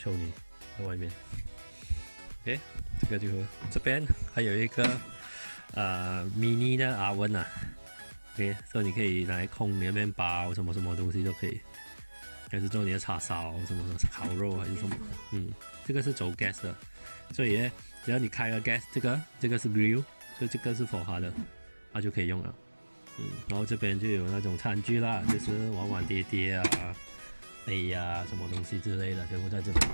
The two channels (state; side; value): inverted; both; correlation -1.00